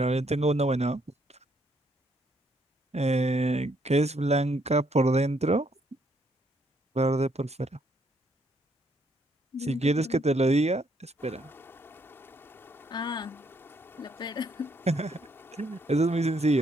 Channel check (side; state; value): both; normal; correlation 0.71